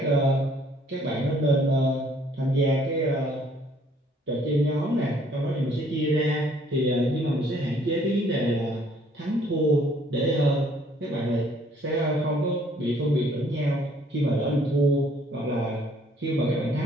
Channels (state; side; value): normal; both; correlation 0.61